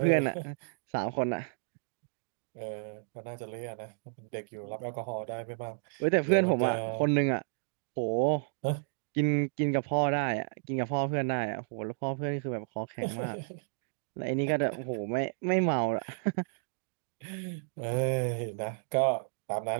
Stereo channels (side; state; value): left; silent; digital silence